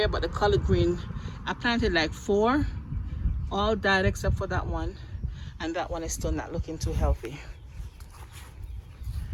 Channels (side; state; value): both; identical; correlation 1.00